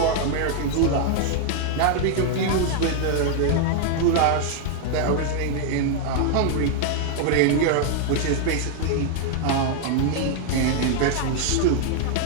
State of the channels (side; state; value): both; different; correlation 0.00